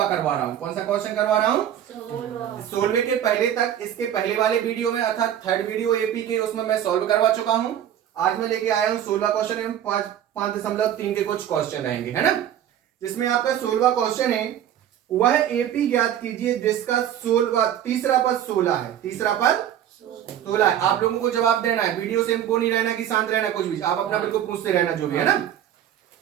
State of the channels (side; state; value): left; quieter; 10.5 dB